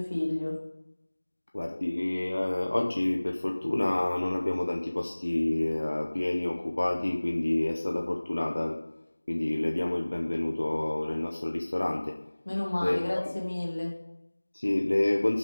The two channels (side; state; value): both; inverted; correlation -1.00